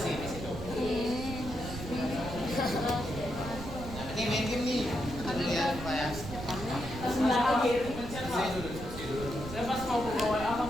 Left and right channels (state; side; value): noise; right; rumble, 9 dB below the sound